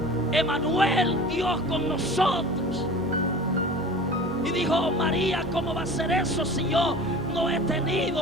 Emmanuel, Dios con nosotros. Y dijo María, ¿cómo va a ser eso si yo no he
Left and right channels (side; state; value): both; normal; correlation 0.39